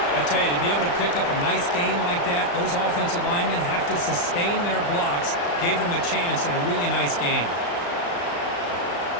I tell you, to be able to pick up a nice gain like that, those offensive linemen have to sustain their blocks. Gave them a chance at a really nice game.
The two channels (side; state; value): right; late; 35 ms